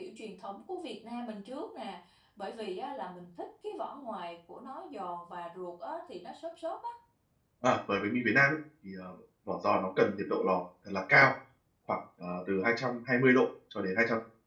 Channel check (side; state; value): both; identical; correlation 1.00